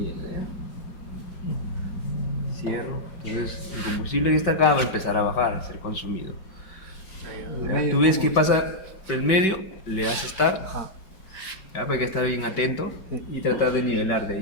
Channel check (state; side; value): late; right; 5.2 ms